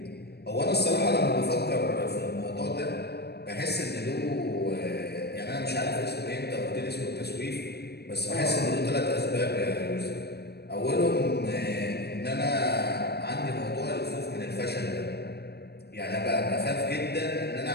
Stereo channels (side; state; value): right; late; 0.47 ms